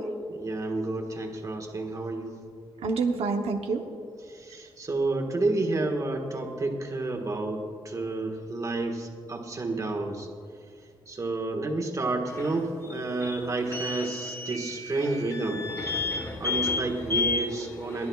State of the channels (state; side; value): normal; both; correlation 0.59